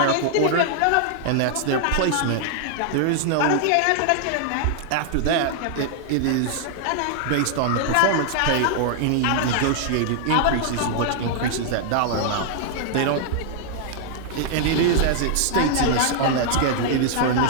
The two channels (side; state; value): both; different; correlation 0.00